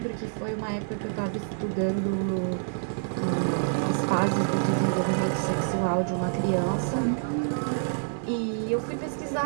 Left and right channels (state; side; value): silent; left; digital silence